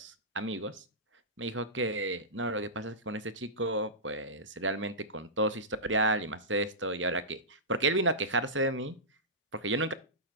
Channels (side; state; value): both; normal; correlation -0.17